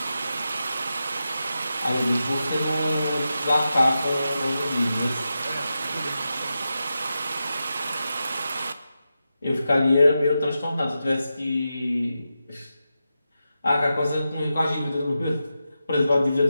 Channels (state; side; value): inverted; both; correlation -0.90